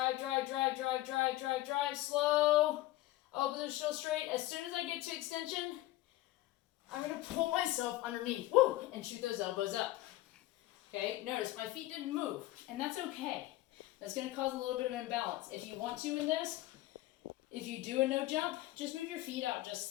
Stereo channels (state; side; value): quieter; right; 16.8 dB